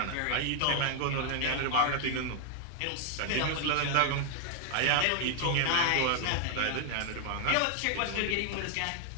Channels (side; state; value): both; different; correlation 0.00